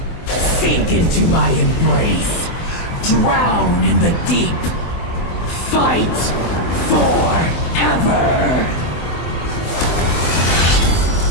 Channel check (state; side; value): late; right; 24 ms